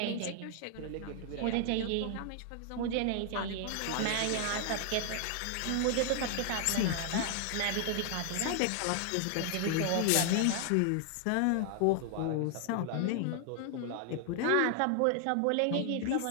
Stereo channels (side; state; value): both; different; correlation 0.00